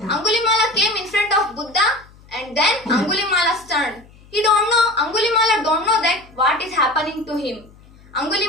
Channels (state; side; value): noise; left; hum, 25 dB below the sound